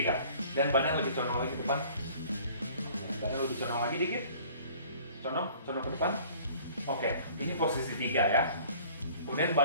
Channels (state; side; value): inverted; both; correlation -0.51